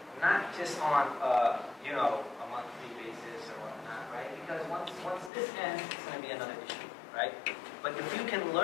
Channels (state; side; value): drops out; right; at 5.3 s